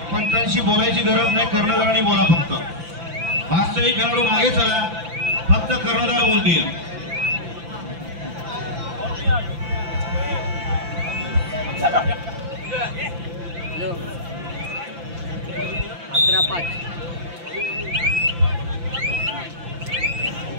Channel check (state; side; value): late; left; 5.9 ms